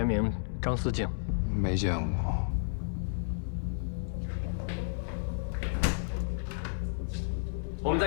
名张思静。没见过。我们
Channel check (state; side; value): silent; right; 56 dB below the other